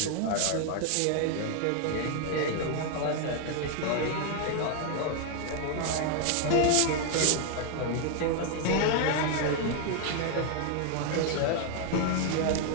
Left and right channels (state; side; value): different; both; correlation 0.00